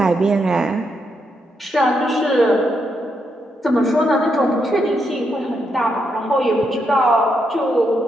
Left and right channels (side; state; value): both; normal; correlation 0.80